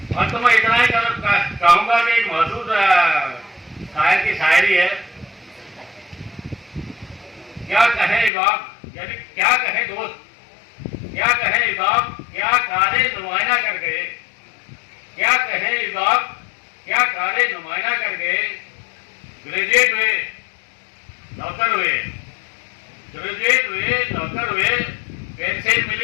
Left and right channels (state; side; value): drops out; right; at 8.3 s